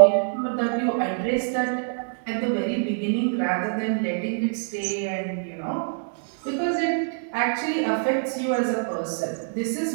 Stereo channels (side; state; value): left; silent; digital silence